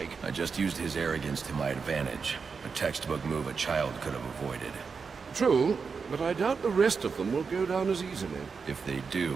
I just used his arrogance to my advantage. A textbook move a child could have avoided. True, but I doubt the rest of them will go down as easily. If they do,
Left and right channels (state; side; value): quieter; left; 5.4 dB